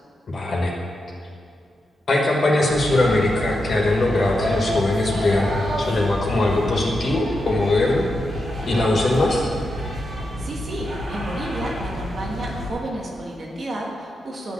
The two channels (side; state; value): both; normal; correlation 0.86